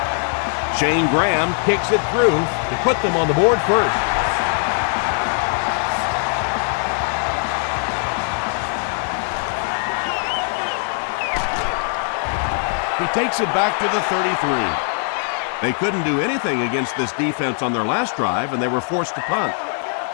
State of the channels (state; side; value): silent; right; 56 dB below the other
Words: Shane Graham kicks it through to put them on the board first. He takes it back to the 33. They couldn't do anything against this defense on their last drive, and they were forced to punt.